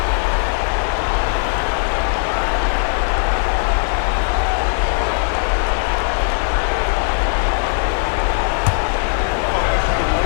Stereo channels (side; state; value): right; silent; digital silence